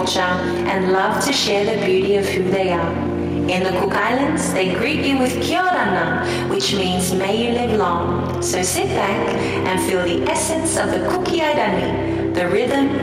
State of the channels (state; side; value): identical; both; correlation 1.00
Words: and love to share the beauty of who they are. In the Cook Islands, they greet you with Kia ora na, which means may you live long. So sit back and feel the essence of the Kuki Airani, the rhythm,